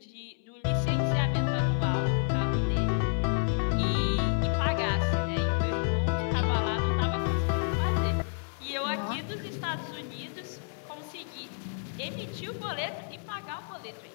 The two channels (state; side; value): silent; right; 58 dB below the other